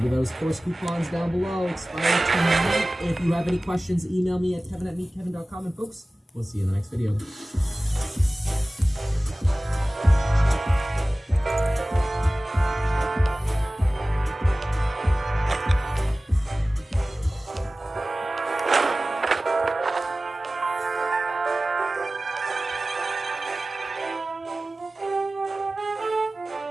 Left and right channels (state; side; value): normal; both; correlation 0.97